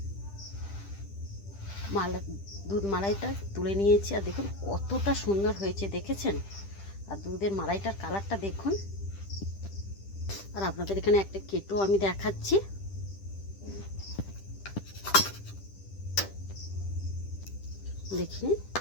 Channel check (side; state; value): right; late; 10 ms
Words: দুধ মালাইটা তুলে নিয়েছি। আর দেখুন কতটা সুন্দর হয়েছে, দেখেছেন? আর দুধের মালাইটার কালারটা দেখুন। আর আপনাদের এখানে একটা কেটো আমি দেখাচ্ছি। দেখুন